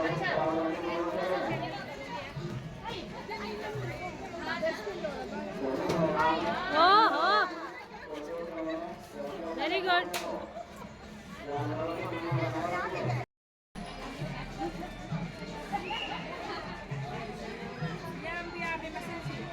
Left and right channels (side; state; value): both; identical; correlation 1.00